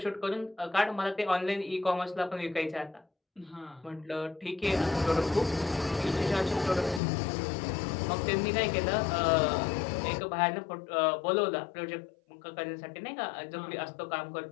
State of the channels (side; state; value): right; drops out; at 7.0 s